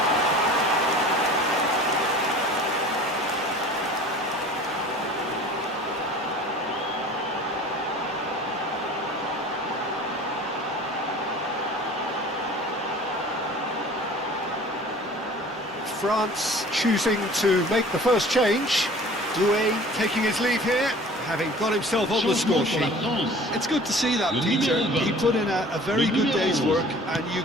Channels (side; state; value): both; normal; correlation 0.45